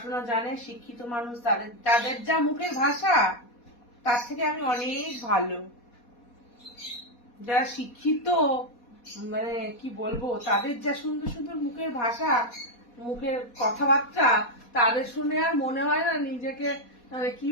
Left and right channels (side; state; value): right; late; 4.2 ms